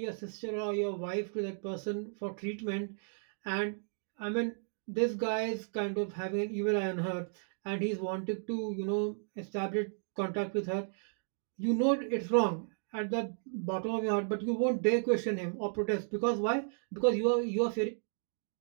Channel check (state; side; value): silent; left; digital silence